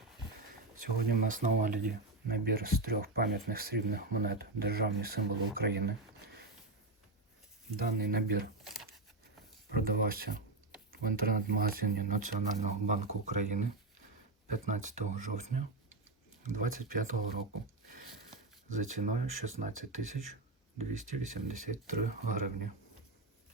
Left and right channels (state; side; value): quieter; left; 3.2 dB